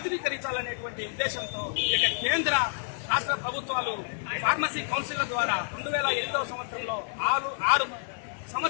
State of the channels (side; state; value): right; silent; digital silence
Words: ఉద్దేశంతో ఇక కేంద్ర రాష్ట్ర ప్రభుత్వాలు ఫార్మసీ కౌన్సిల్ ద్వారా 2008వ సంవత్సరంలో 6